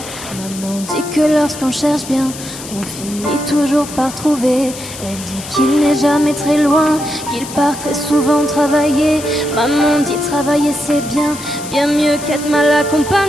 Maman dit que lorsqu'on cherche bien, on finit toujours par trouver. Elle dit qu'il n'est jamais très loin, qu'il part très souvent travailler. Maman dit travailler c'est bien, bien mieux qu'être mal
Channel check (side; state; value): left; noise; hiss, 12 dB below the sound